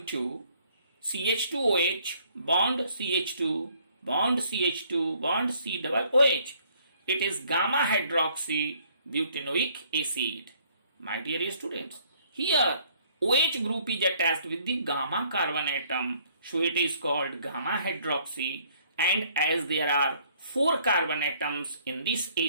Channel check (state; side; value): inverted; both; correlation -0.62